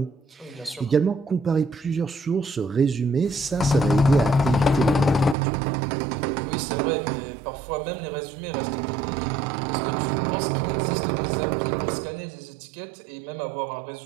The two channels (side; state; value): left; drops out; at 5.4 s